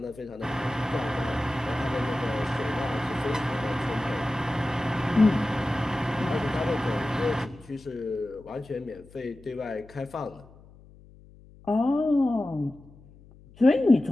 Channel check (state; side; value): noise; left; hum, 23 dB below the sound